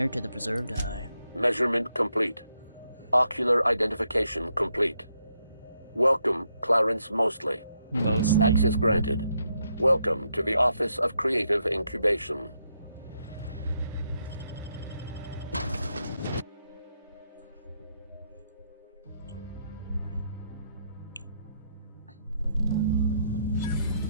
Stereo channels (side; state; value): both; inverted; correlation -0.78